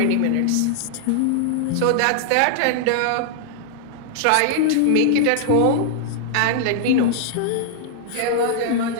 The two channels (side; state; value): both; different; correlation -0.01